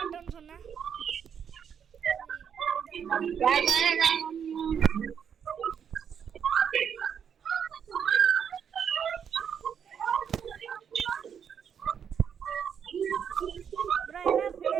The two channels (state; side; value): quieter; left; 7.8 dB